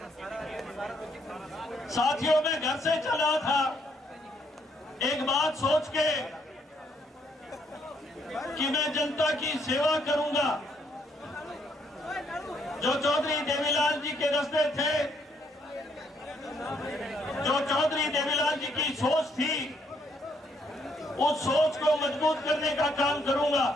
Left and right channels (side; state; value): both; normal; correlation 0.71